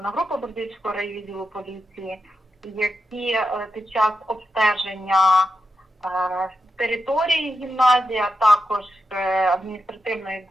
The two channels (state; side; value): normal; both; correlation 0.87